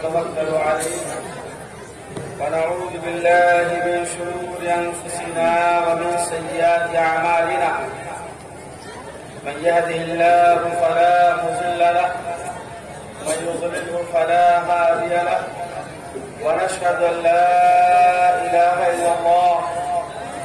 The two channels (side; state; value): both; identical; correlation 1.00